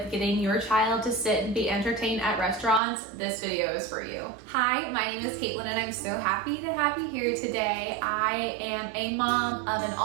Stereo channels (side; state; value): left; drops out; at 2.8 s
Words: getting your child to sit and be entertained at restaurants, this video is for you. Hi, my name is Caitlin and I'm so happy to have you here today. I am a mom of an